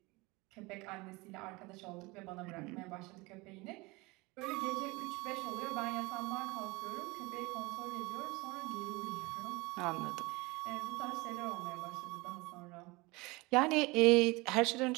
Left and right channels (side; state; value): left; quieter; 24.0 dB